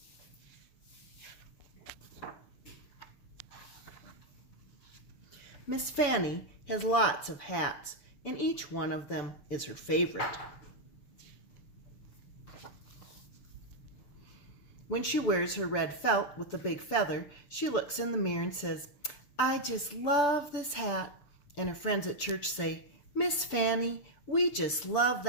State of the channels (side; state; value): right; late; 7.1 ms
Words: Miss Fannie has lots of hats, and each one of them is her favorite. When she wears her red felt with the big feather, she looks in the mirror and says, "I just love this hat." And her friends at church say, "Miss Fannie, we just love